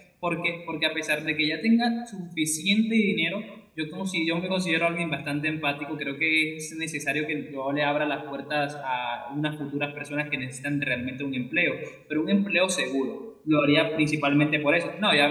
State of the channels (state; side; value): identical; both; correlation 1.00